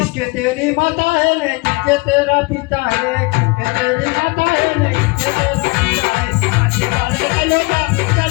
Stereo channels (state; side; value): quieter; right; 26.5 dB